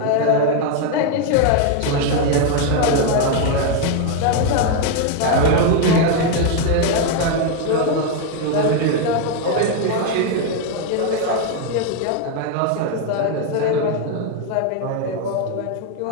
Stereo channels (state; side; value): different; both; correlation 0.01